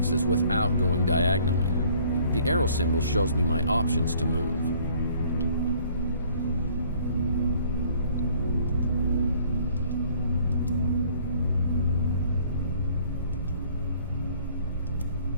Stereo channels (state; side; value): inverted; both; correlation -0.58